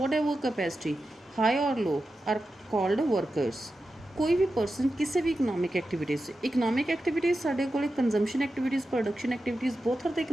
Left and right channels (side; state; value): both; normal; correlation 0.91